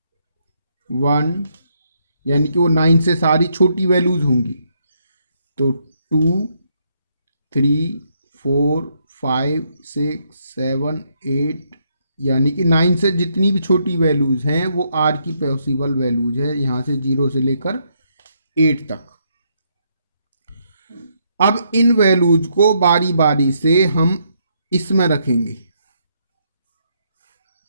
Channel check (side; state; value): both; inverted; correlation -0.75